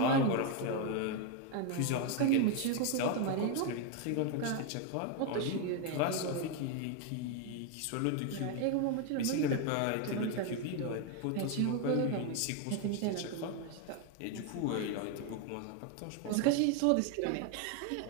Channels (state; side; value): different; both; correlation 0.01